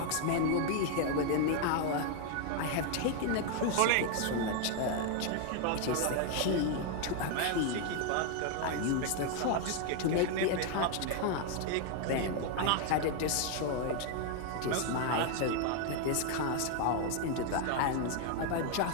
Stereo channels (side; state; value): both; different; correlation 0.00